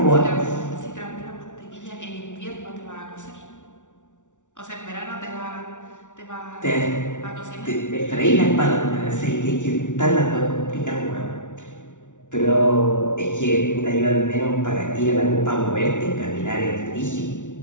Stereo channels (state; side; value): late; right; 0.86 ms